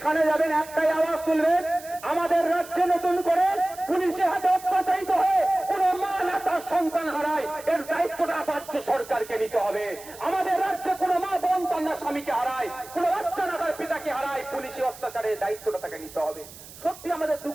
যাবেন একটাই আওয়াজ তুলবেন, আমাদের রাজ্যে নতুন করে পুলিশের হাতে অত্যাচারিত হয়ে কোন মা না তার সন্তান হারায়, এর দায়িত্বটা রাজ্য সরকারকে নিতে হবে। আমাদের রাজ্যে কোন মা বোন তার না স্বামীকে হারায়, কোন বাচ্চা না তার পিতাকে হারায়, পুলিশের অত্যাচারের দায়িত্বটা তাকে নিতে হবে। সত্যি আমাদের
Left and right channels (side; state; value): right; noise; hiss, 18 dB below the sound